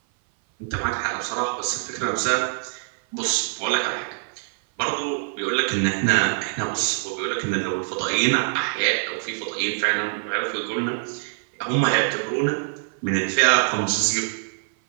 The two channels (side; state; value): left; silent; 57 dB below the other